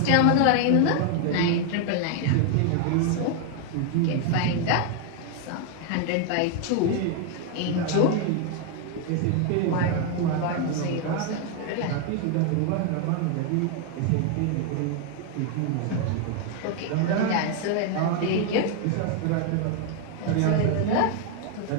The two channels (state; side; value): different; both; correlation 0.00